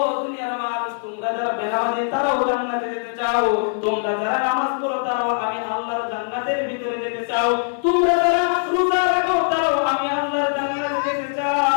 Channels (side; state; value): right; silent; digital silence